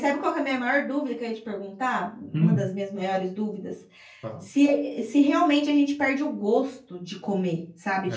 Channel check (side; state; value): both; identical; correlation 1.00